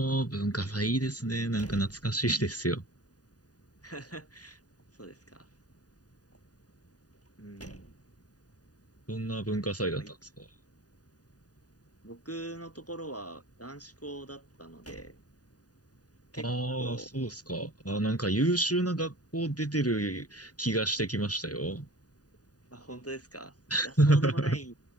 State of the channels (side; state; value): right; late; 0.68 ms